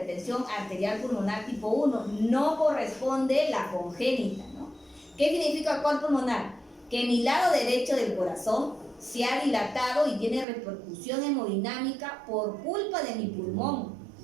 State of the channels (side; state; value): left; drops out; at 10.5 s